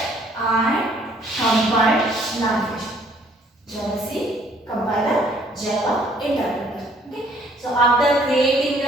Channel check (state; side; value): normal; both; correlation 0.61